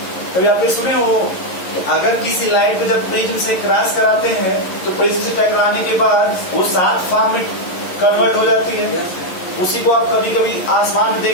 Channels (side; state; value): right; late; 11 ms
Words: कभी आपने सुने हो कि अगर किसी लाइट को जब प्रिज्म से क्रॉस कराते हैं तो प्रिज्म से टकराने के बाद वो 7 फॉर्म में कन्वर्ट हो जाती है। उसी को आप कभी कभी आसमान में